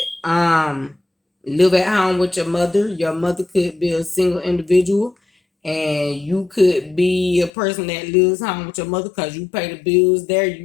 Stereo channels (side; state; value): right; drops out; at 7.5 s